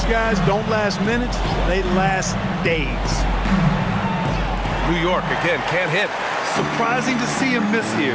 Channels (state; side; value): identical; both; correlation 1.00